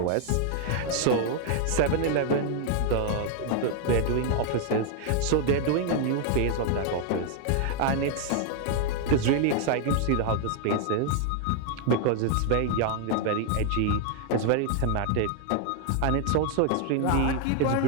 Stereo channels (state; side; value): different; both; correlation 0.00